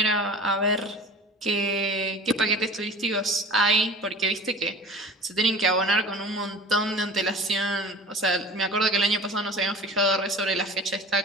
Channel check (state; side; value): normal; both; correlation 0.39